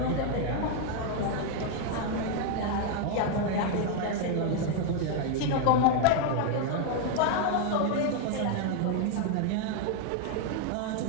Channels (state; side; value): different; both; correlation 0.00